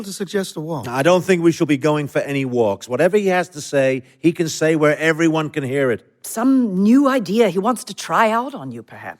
to suggest a walk? I don't think we shall be going for any walks. Whatever he has to say, he can say where everyone can hear it. Some new idea he wants to try out on you,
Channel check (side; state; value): both; identical; correlation 1.00